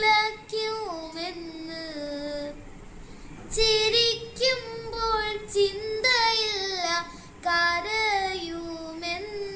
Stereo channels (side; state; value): both; identical; correlation 1.00